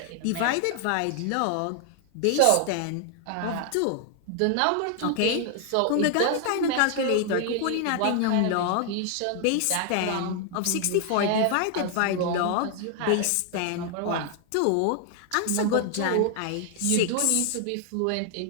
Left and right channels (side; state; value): both; different; correlation 0.00